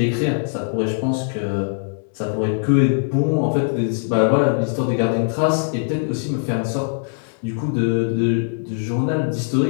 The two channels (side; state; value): right; silent; digital silence